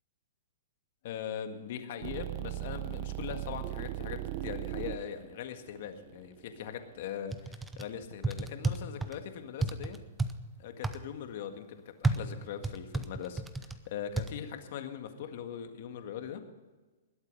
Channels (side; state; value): both; normal; correlation 0.29